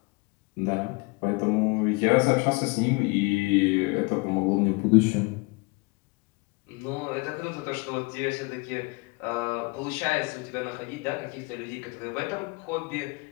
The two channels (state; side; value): quieter; right; 27.6 dB